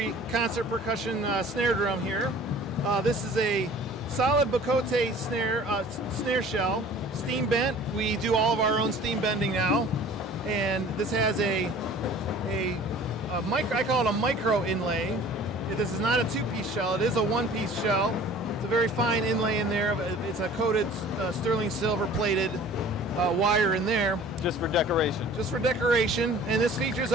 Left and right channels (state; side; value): normal; both; correlation 0.47